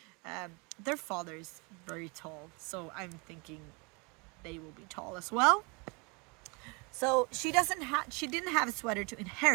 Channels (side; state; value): left; quieter; 29.9 dB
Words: Their father is very tall, so I'm thinking they will be tall as well. So she didn't have a sweater to